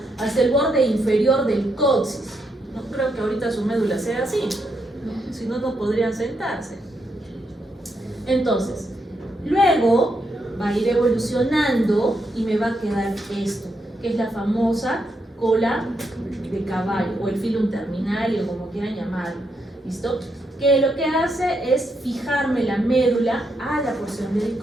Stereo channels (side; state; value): both; normal; correlation 0.80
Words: hasta el borde inferior del coxis. No creo que ahorita su médula sea así, ¿no? Si no, no podrían sentarse. Entonces, luego va a ir evolucionando y me va a quedar esto, que es la famosa cola de caballo, o el filum terminal, o como quieran llamarlo. ¿Listo? Que lo que hace es fijarme la médula a la porción del